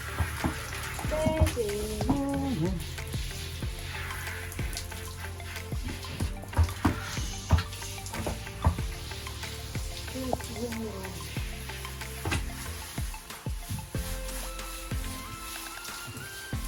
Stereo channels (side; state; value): both; identical; correlation 1.00